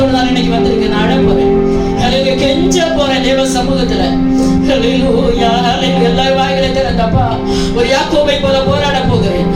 நான் இன்னைக்கு வந்திருக்கேன். நான் அழ போறேன். ஹல்லேலூயா. கெஞ்ச போறேன் தேவ சமூகத்துல. ஹல்லேலூயா. ஹல்லேலூயா. எல்லா வாய்களை திறந்தப்பா, ஒரு யாக்கோபை போல போராட போகிறேன்.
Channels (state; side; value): identical; both; correlation 1.00